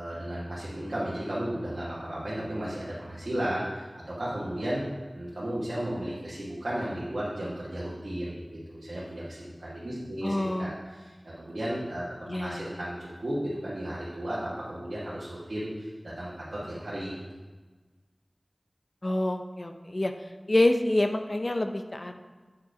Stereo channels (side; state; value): both; normal; correlation 0.98